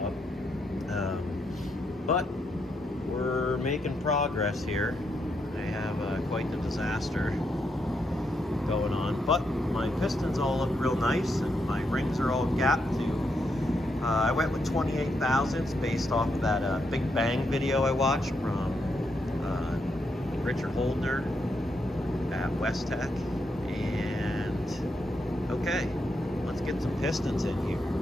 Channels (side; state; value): both; normal; correlation 0.80